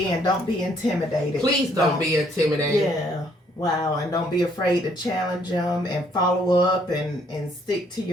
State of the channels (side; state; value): both; normal; correlation 0.66